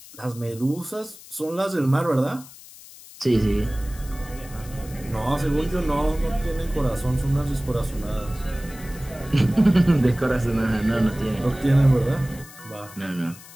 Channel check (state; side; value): noise; left; hiss, 19 dB below the sound